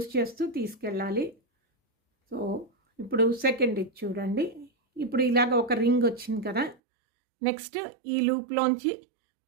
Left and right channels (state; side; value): drops out; left; at 6.8 s